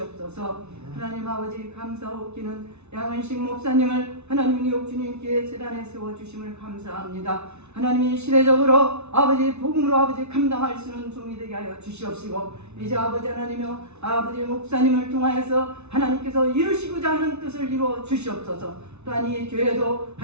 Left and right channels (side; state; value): left; late; 0.81 ms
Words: 하나님 아버지 감사하옵기는 양은식 목사님을 하나님 뉴욕 주님께 제단에 세워주심을 감사합니다. 하나님이 시대적으로 아버지 복음으로 아버지 감당할 수 있는 종이 되게 하여 주시옵시고 이제 아버지 하나님이여 아버지 목사님을 통하여서 하나님께서 이루시고자 하는 뜻을 이루어 주시옵소서. 또한 이 교회도